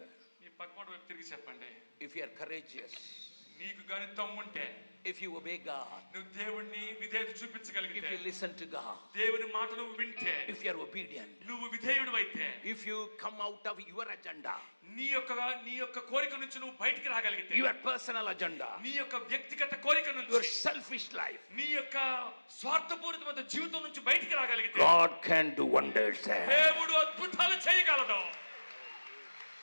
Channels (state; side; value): inverted; both; correlation -1.00